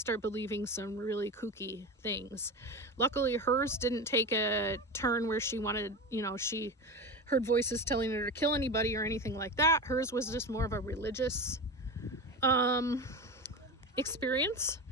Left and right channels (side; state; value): both; normal; correlation 0.24